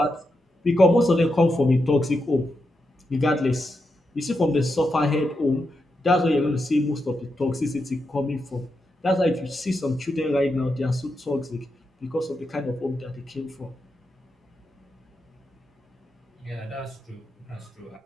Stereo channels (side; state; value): both; normal; correlation 0.86